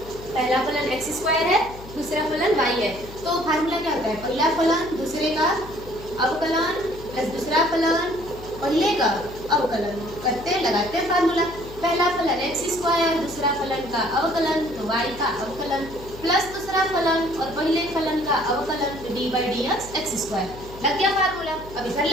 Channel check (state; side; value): noise; left; hum, 16 dB below the sound